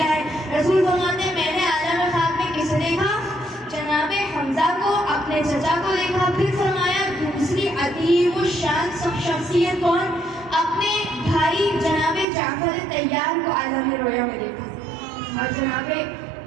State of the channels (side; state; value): left; drops out; at 12.2 s